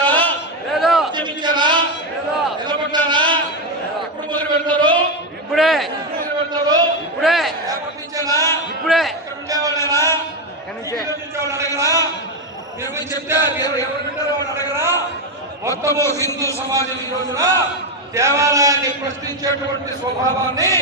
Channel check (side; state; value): both; normal; correlation 0.09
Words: ఉద్యమించారా? నిలబడ్డారా? ఎప్పుడు మొదలు పెడతారు? ఇప్పుడే. మొదలు పెడతారు? ఇప్పుడే. ఏర్పడించారా? ఇప్పుడే. ఉండేవాళ్ళేనా? అడగరా? మీరు చెప్తే ఎవరు వింటారో వాళ్ళు అడగరా? మొత్తము హిందూ సమాజం ఈ రోజున దేవాలయాన్ని ప్రశ్నించేటువంటి స్వభావాన్ని